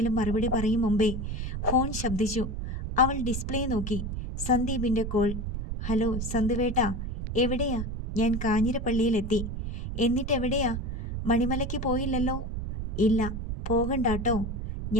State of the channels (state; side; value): noise; right; rumble, 4 dB below the sound